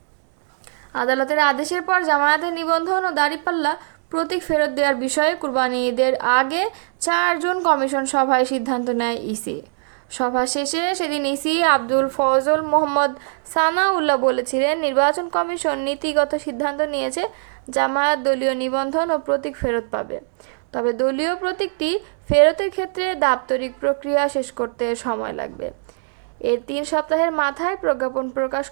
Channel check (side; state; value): left; silent; 65 dB below the other